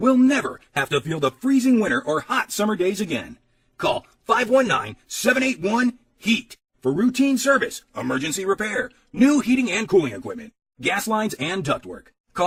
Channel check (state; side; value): identical; both; correlation 1.00